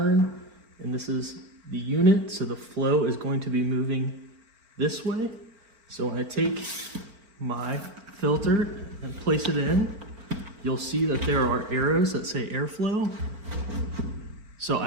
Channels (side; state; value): left; late; 4.4 ms